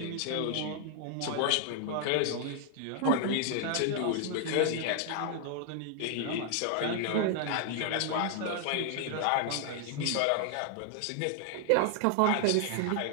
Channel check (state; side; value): different; both; correlation 0.00